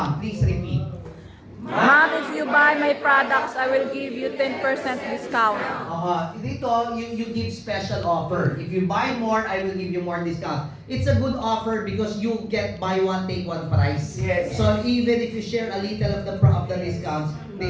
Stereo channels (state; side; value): identical; both; correlation 1.00